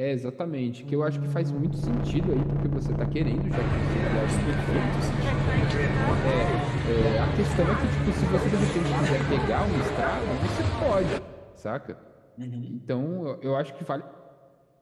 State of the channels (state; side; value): identical; both; correlation 1.00